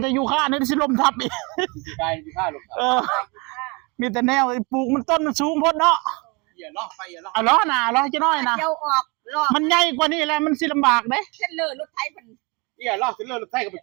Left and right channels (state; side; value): quieter; left; 27.8 dB